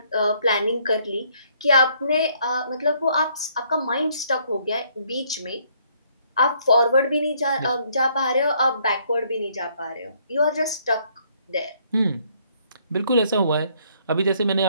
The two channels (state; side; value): inverted; both; correlation -0.67